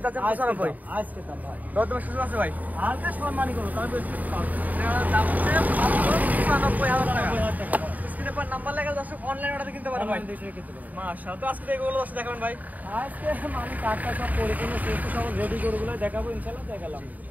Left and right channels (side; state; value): left; late; 0.078 ms